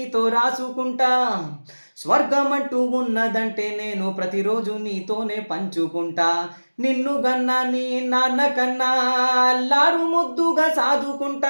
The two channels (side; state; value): both; inverted; correlation -1.00